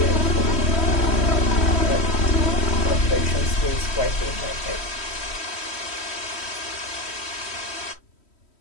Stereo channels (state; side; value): late; right; 3.1 ms